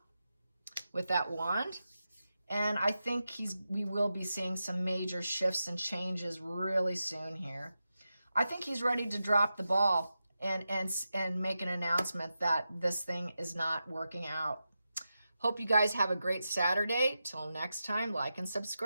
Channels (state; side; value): inverted; both; correlation -0.90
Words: with that wand. And I think we will be seeing some major shifts and changes really soon here. I think he's ready to drop the ball and make an announcement that this thing is not working out. Hope you guys have a great Saturday. Till next time, like and